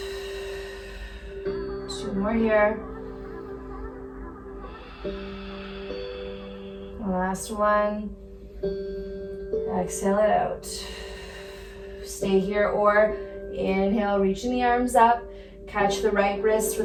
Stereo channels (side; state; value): both; identical; correlation 1.00